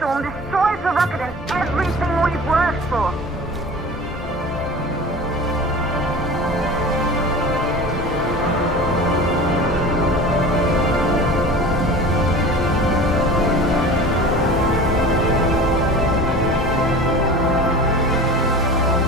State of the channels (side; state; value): both; normal; correlation 0.37